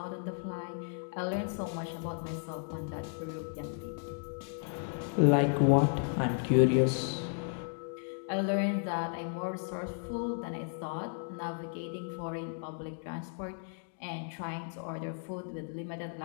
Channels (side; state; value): right; silent; 55 dB below the other